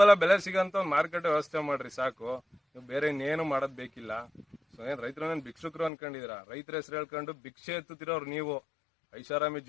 ಬೆಲೆ ಸಿಗಂತ ಒಂದು ಮಾರುಕಟ್ಟೆ ವ್ಯವಸ್ಥೆ ಮಾಡ್ರಿ ಸಾಕು. ನೀವು ಬೇರೆ ಇನ್ನೇನು ಮಾಡೋದ್ ಬೇಕಿಲ್ಲ. ಸೊ ಏನ್ ರೈತರನ್ನೇನು ಭಿಕ್ಷುಕರು ಅನ್ಕೊಂಡಿದೀರಾ? ರೈತರ ಹೆಸರು ಹೇಳ್ಕೊಂಡು ಭಿಕ್ಷೆ ಎತ್ತುತ್ತಿರೋರು ನೀವು. ಐಷಾರಾಮಿ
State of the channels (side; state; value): right; drops out; at 5.9 s